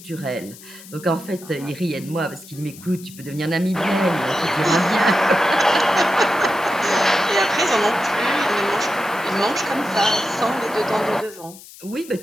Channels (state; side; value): noise; left; hiss, 19 dB below the sound